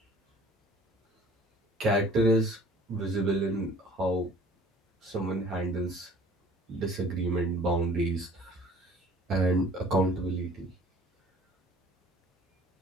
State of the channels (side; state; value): both; normal; correlation 0.51